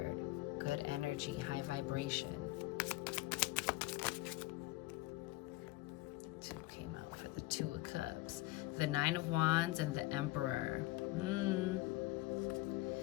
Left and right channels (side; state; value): right; quieter; 19.3 dB